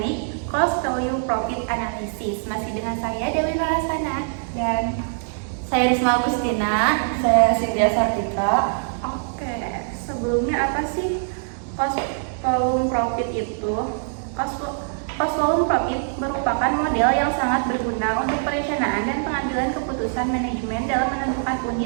cost value profit analysis. Masih dengan saya Dewi Narasana dan saya Risma Agustina. Saya Cynthia Sartika. Oke, sebelumnya apa sih cost volume profit itu? Cost volume profit merupakan model yang sangat berguna untuk perencanaan dan pengambilan keputusan manajemen dalam menentukan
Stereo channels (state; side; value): silent; left; digital silence